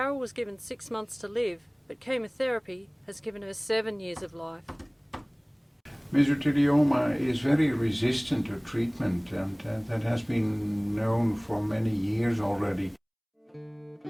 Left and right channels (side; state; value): both; identical; correlation 1.00